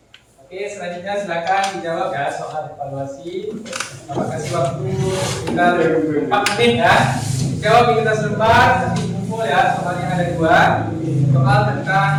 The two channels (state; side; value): identical; both; correlation 1.00